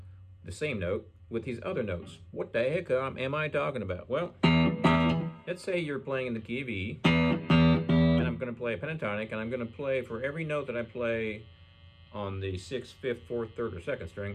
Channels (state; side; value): identical; both; correlation 1.00